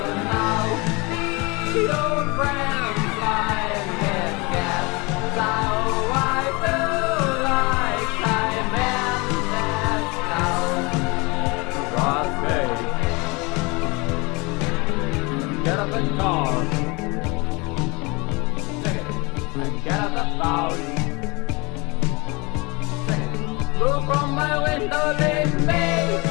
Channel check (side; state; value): right; quieter; 26.9 dB